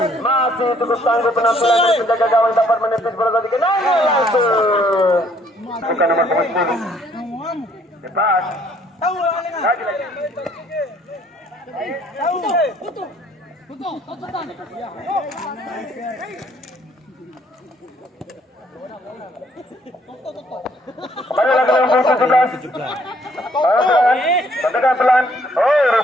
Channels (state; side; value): normal; both; correlation 0.64